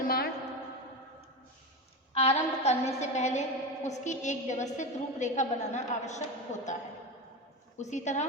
आरंभ करने से पहले उसकी एक व्यवस्थित रूपरेखा बनाना आवश्यक होता है, उसी तरह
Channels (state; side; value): normal; both; correlation 0.21